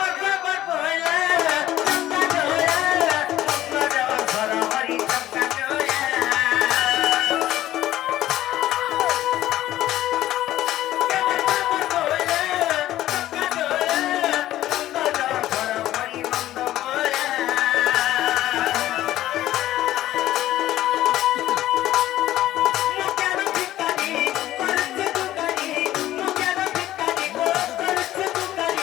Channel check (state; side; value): quieter; right; 14.1 dB